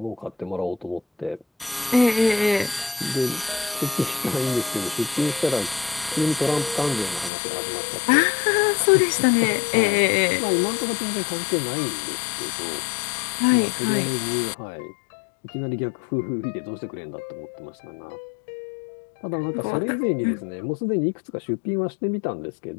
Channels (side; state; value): right; drops out; at 7.3 s